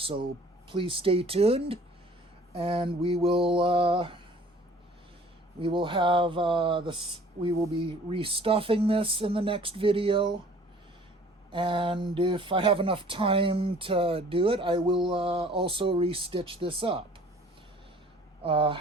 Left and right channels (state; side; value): normal; both; correlation 0.52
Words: please stay tuned, and we will be restuffing this in the next video. And if I have enough time to do it, I will also restitch this up.